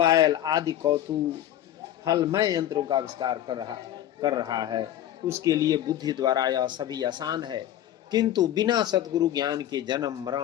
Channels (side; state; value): right; quieter; 12.0 dB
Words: आदि कौतूहलमय यंत्रों का आविष्कार कर रहा है। उसके लिए बुद्धि द्वारा यह सभी आसान है, किंतु बिना सतगुरु ज्ञान के जन्म